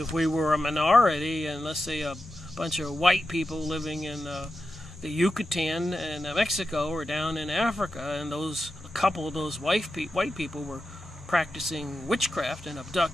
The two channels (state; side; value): normal; both; correlation 0.90